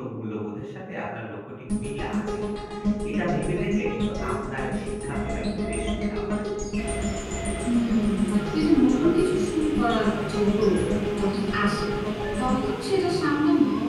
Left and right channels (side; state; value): both; identical; correlation 1.00